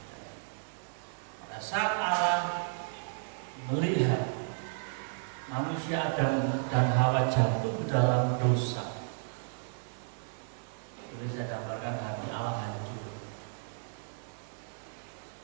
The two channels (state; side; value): silent; left; digital silence